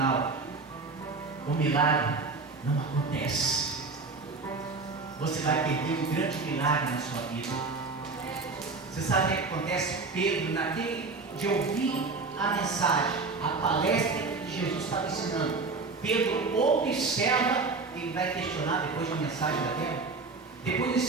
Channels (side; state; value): left; quieter; 4.0 dB